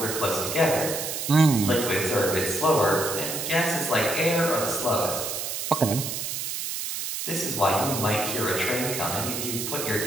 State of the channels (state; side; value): noise; right; hiss, 4 dB below the sound